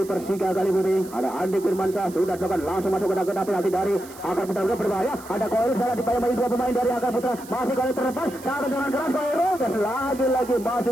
Persika Kali Putih ada Andi Firmansyah sudah dilakukan langsung masuk ke dalam penalti dari akar putra berbahaya ada Koirul salah dipayungi dua pemain dari akar putra masih kali terlepas cara dengan keras Koirul dan lagi-lagi masih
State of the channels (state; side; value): noise; right; hiss, 19 dB below the sound